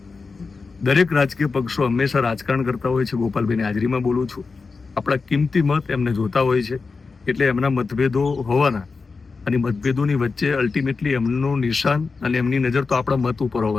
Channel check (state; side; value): quieter; right; 4.5 dB